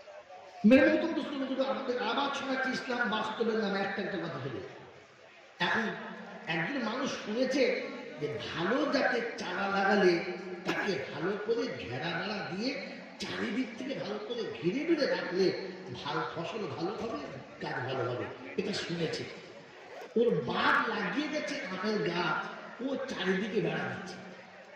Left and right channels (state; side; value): identical; both; correlation 1.00